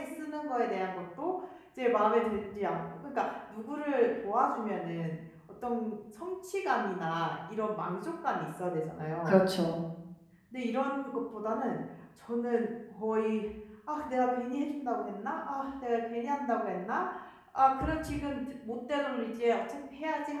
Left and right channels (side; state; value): both; identical; correlation 1.00